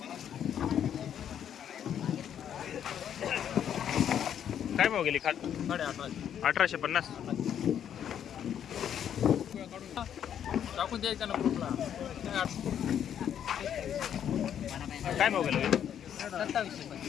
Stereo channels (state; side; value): quieter; right; 9.4 dB